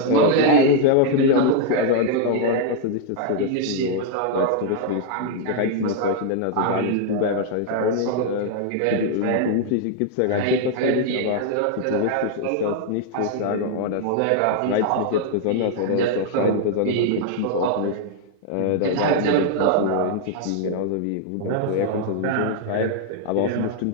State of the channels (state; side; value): different; both; correlation 0.00